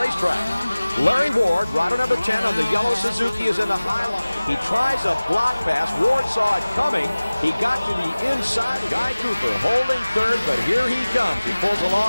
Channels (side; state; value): both; inverted; correlation -0.99